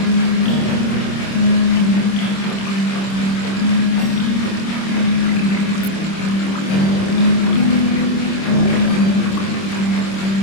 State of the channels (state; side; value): late; right; 26 ms